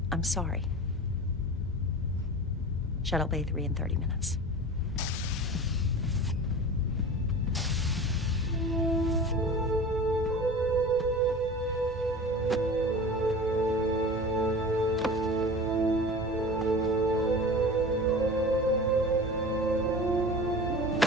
I'm sorry. Shuttle Bay 3 in 30 minutes.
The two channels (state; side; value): normal; both; correlation 0.35